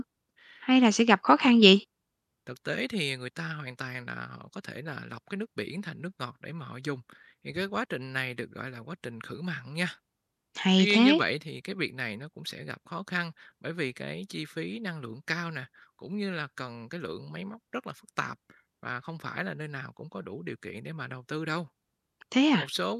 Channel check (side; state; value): both; identical; correlation 1.00